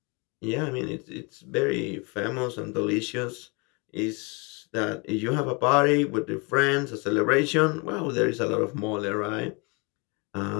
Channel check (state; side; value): quieter; right; 30.3 dB